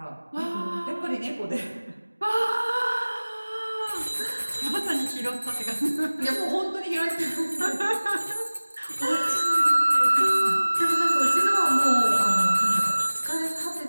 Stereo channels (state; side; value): inverted; both; correlation -1.00